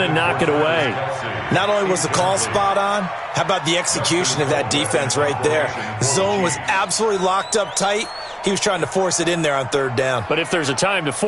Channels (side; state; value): both; identical; correlation 1.00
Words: and knock it away. Not only was the call spot on, how about the execution of that defense right there? The zone was absolutely locked up tight. He was trying to force it in there on 3rd down. But if there's a time to